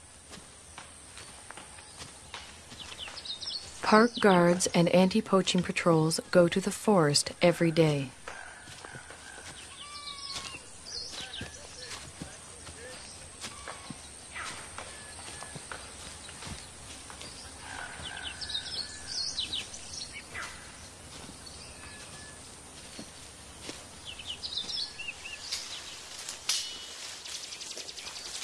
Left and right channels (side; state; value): both; identical; correlation 1.00